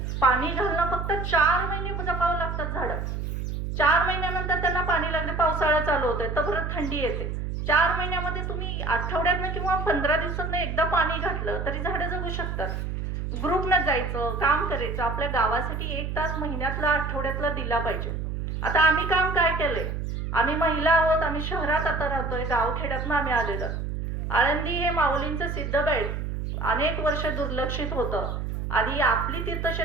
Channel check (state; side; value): noise; right; hum, 3 dB below the sound